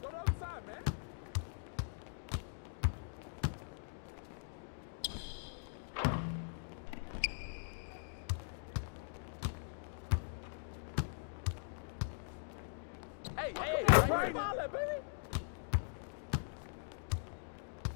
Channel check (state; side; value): silent; right; digital silence